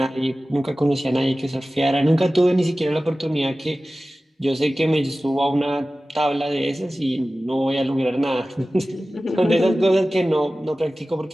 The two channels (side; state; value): both; normal; correlation 0.96